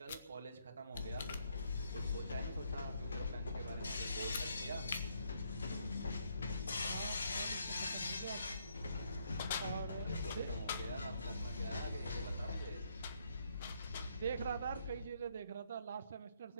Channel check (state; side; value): inverted; both; correlation -0.72